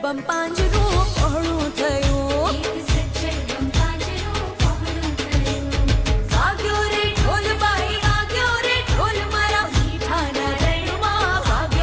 બમ પાંજરું પહોળું થયું વાગ્યો રે ઢોલ બાઈ વાગ્યો રે ઢોલ મારા મીઠાના રણમાં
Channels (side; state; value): both; identical; correlation 1.00